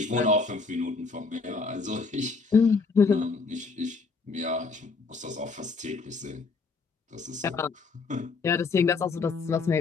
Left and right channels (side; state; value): right; quieter; 4.5 dB